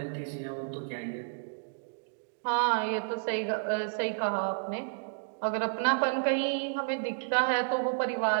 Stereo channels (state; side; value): silent; left; digital silence